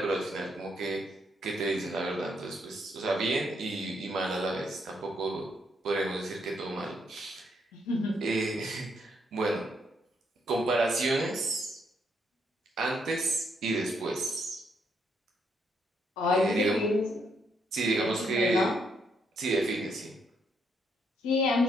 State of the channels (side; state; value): both; normal; correlation 0.75